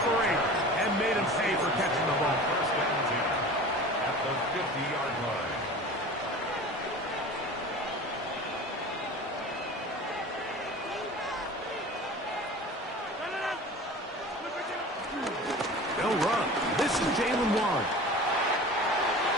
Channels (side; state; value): both; normal; correlation 0.38